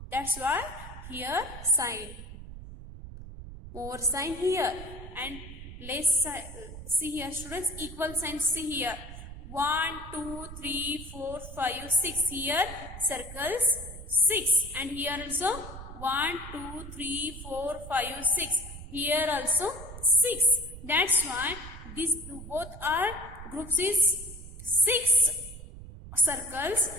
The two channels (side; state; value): right; noise; rumble, 12 dB below the sound